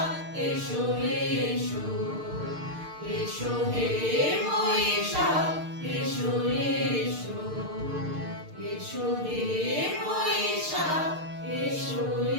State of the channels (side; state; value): left; late; 6.6 ms